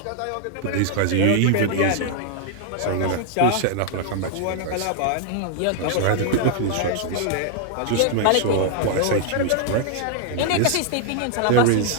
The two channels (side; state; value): both; different; correlation 0.00